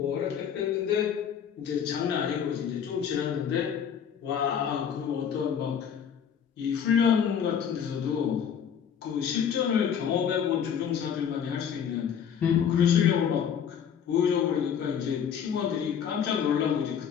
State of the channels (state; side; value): quieter; right; 8.1 dB